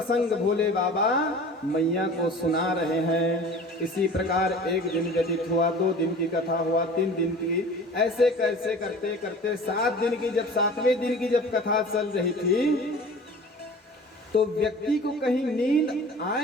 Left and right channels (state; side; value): normal; both; correlation 0.42